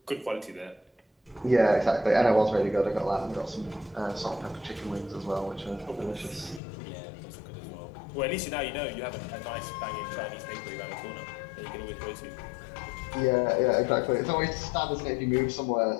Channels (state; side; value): drops out; right; at 6.6 s